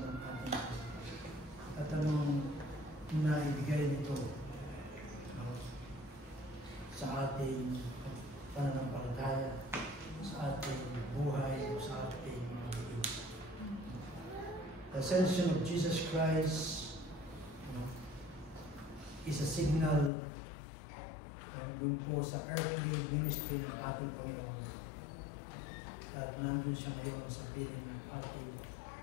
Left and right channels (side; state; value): right; drops out; at 20.1 s